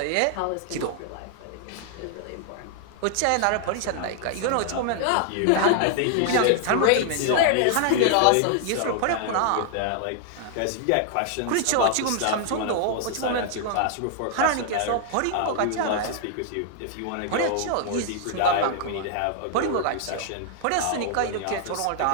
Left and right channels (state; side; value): different; both; correlation 0.00